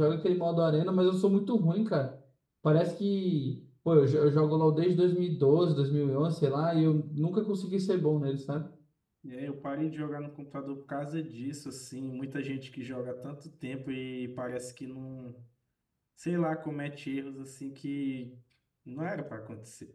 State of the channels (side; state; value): both; identical; correlation 1.00